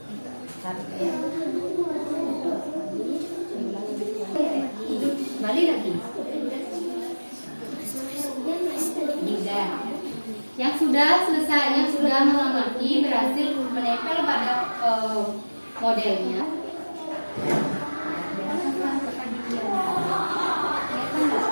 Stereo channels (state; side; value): inverted; both; correlation -1.00